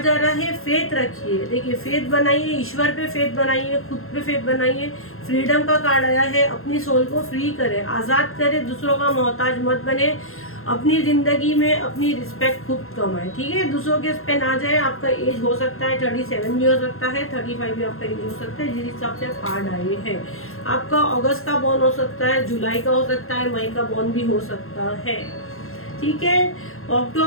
जा रहा है फेथ रखिए, देखिए फेथ बनाइए, ईश्वर पे फेथ बनाइए, खुद पे फेथ बनाइए। फ्रीडम का कार्ड आया है, अपनी सोल को फ्री करें, आज़ाद करें, दूसरों का मोहताज मत बने, अपनी ज़िंदगी में अपनी रिस्पेक्ट खुद कमाएं, ठीक है। दूसरों के पे ना जाए। आपका एज हो सकता है 37 भी हो सकता है, 35 भी आपका एज हो सकता है, जिस हिसाब से कार्ड आए हैं। आपका अगस्त का बॉर्न हो सकता है, जुलाई का हो सकता है, मई का बॉर्न भी हो सकता है, ठीक है।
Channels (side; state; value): right; late; 0.61 ms